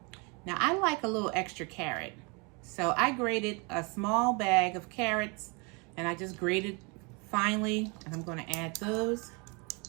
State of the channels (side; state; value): left; quieter; 31.1 dB